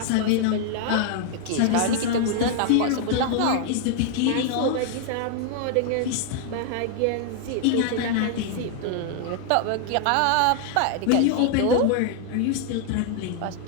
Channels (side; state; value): both; different; correlation 0.00